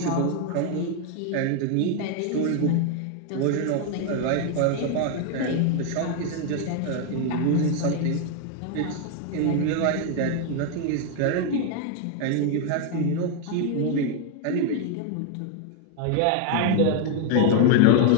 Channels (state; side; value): different; both; correlation 0.00